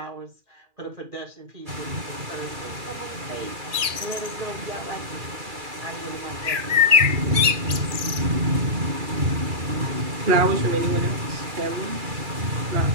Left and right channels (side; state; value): left; late; 2.4 ms